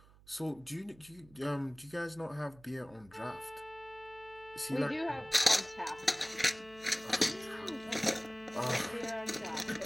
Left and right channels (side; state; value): right; noise; hum, 24 dB below the sound